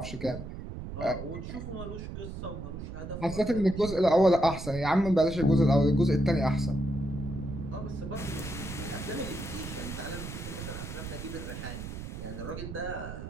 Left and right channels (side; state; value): right; noise; rumble, 8 dB below the sound